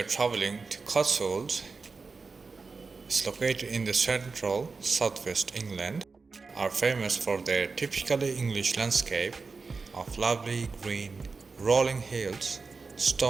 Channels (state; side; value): quieter; left; 4.4 dB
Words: traveling to Cotswolds. It's located in the central southwest England, are famous for their typically English landscape of lovely green rolling hills,